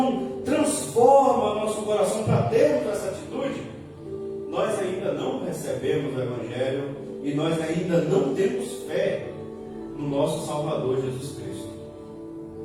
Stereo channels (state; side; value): identical; both; correlation 1.00